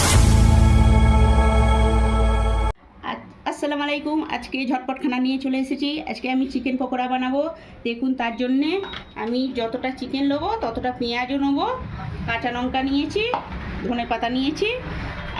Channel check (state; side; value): identical; both; correlation 1.00